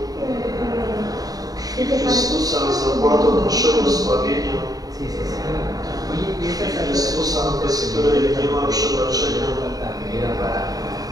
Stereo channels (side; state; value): left; late; 0.18 ms